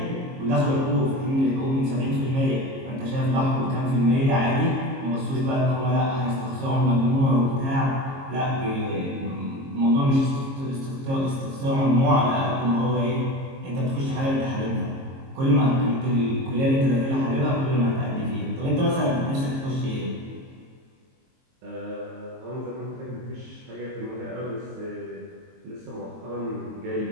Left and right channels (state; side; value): late; left; 22 ms